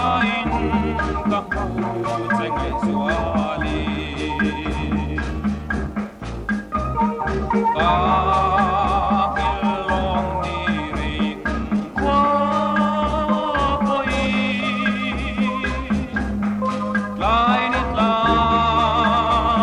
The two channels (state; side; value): identical; both; correlation 1.00